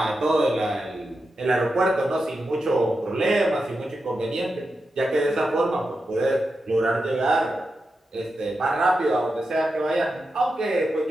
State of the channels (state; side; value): normal; both; correlation 0.89